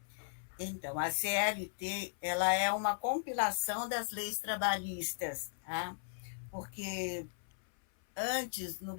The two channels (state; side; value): silent; right; 53 dB below the other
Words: Então, a CLT, ela é uma compilação das leis trabalhistas, tá? Porque antes, no